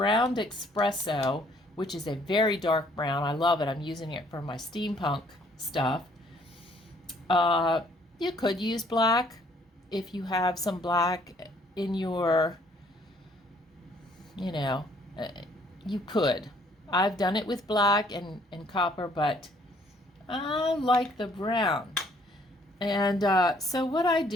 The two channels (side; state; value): both; normal; correlation 0.62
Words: espresso, which is a very dark brown. I love it. I'm using it for my steampunk stuff. You could use black if you have some black in your, you know, you could. I've done it with black and copper, but I like the brown. And so what I